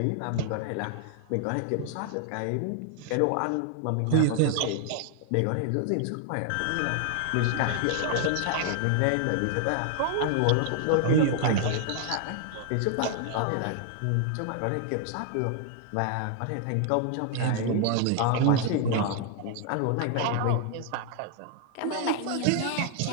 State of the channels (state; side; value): different; both; correlation 0.00